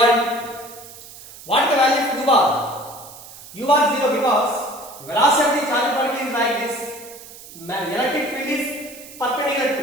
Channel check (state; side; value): noise; right; hiss, 17 dB below the sound